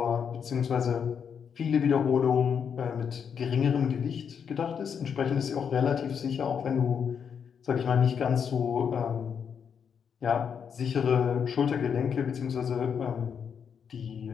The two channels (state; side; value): quieter; right; 7.2 dB